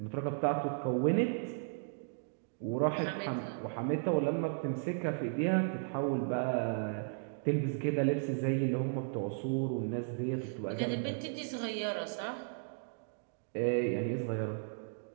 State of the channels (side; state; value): left; silent; digital silence